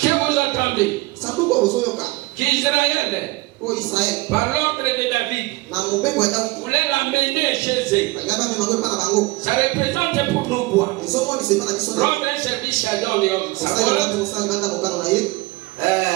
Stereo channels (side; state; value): left; quieter; 21.8 dB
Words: vous entendez sanduku ozoyoka qu'Israël o Israel par l'ordre de David na mobeko ya Davidi voulait l'amener chez eux. balinga bamema ngo epa na bango Ça représente pour nous quoi? ezomonisa epa na biso Rendre un service à Dieu. osalelate mosala banda mokano na ye.